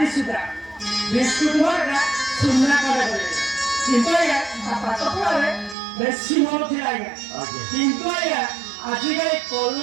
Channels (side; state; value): left; drops out; at 5.8 s